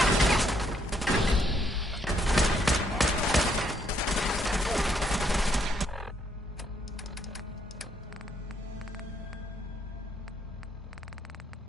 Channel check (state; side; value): normal; both; correlation 0.72